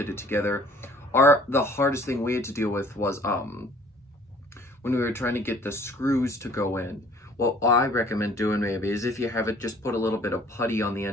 it together. The hardest thing we had to deal with was when we were trying to get the screws to go in. What I recommend doing maybe is, if you have it, just put a little bit of putty on the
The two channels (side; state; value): both; normal; correlation 0.54